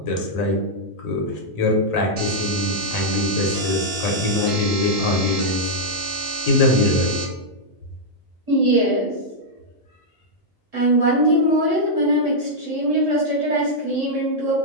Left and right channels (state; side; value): normal; both; correlation -0.06